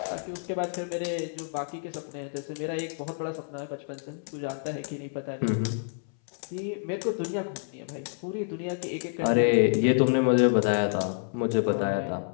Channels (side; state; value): right; silent; 59 dB below the other